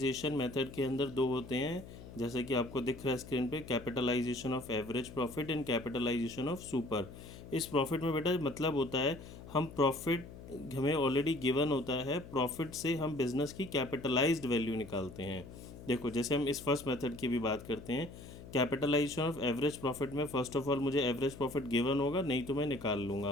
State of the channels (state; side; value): noise; left; hum, 15 dB below the sound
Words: मेथड के अंदर दो होते हैं, जैसे कि आपको दिख रहा है स्क्रीन पे, capitalization of average profit and capitalization of super. इस प्रॉफिट में बेटा मतलब होता है हम प्रॉफिट हमें ऑलरेडी गिवन होता है, प्रॉफिट से हम बिजनेस की कैपिटलाइज्ड वैल्यू निकालते हैं। देखो जैसे हम इस फर्स्ट मेथड की भी बात करते हैं, कैपिटलाइजेशन ऑफ एवरेज प्रॉफिट में फर्स्ट ऑफ ऑल मुझे एवरेज प्रॉफिट गिवन होगा, नहीं तो मैं निकाल